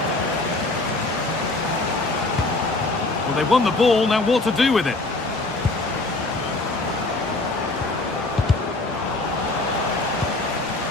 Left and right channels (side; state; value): right; quieter; 3.0 dB